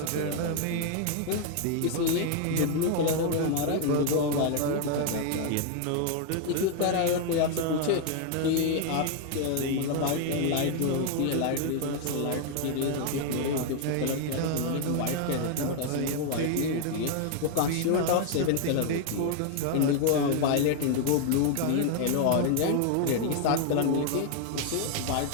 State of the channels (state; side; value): different; both; correlation 0.00